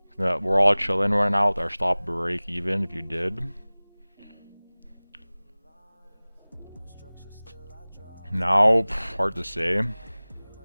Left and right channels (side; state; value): both; inverted; correlation -1.00